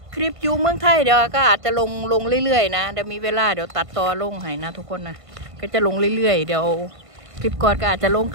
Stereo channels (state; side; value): late; left; 1.5 ms